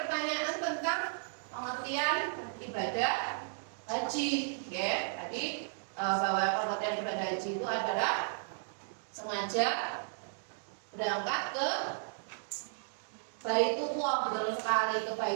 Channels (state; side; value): silent; left; digital silence